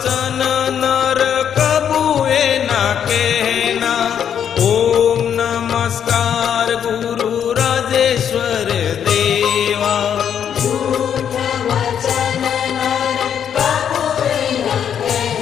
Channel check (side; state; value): right; quieter; 8.6 dB